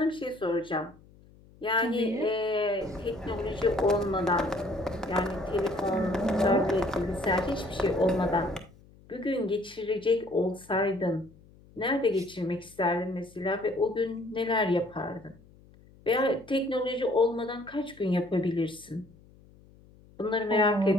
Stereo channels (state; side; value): noise; left; hum, 25 dB below the sound